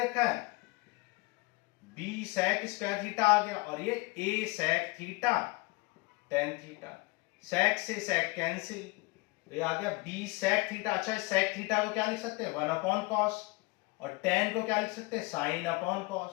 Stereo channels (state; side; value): quieter; right; 24.5 dB